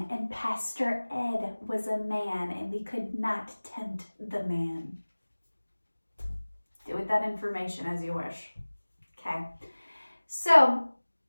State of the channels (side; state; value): both; inverted; correlation -1.00